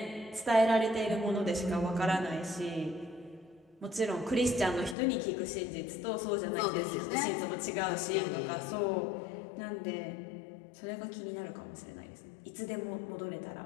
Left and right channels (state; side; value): drops out; right; at 5.0 s